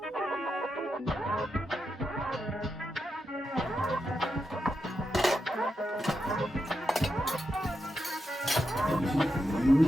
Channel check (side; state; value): both; normal; correlation 0.86